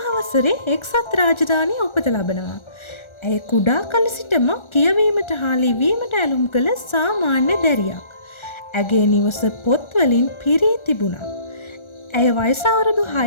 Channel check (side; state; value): right; late; 1.4 ms